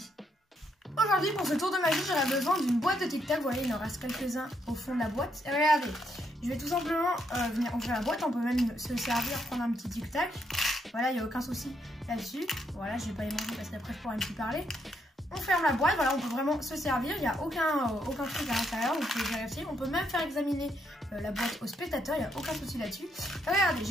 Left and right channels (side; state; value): both; normal; correlation 0.76